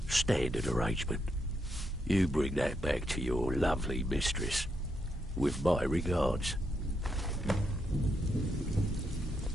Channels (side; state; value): both; normal; correlation 0.80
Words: standard arrangement. You bring that back to your lovely mistress, with my regards.